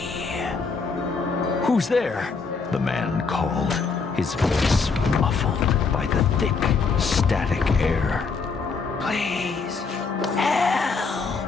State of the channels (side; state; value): right; quieter; 4.8 dB